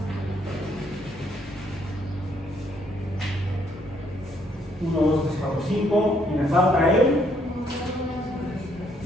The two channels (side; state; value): both; normal; correlation 0.70